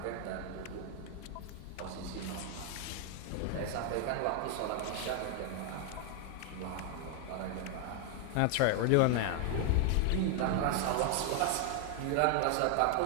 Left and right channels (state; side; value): different; both; correlation 0.00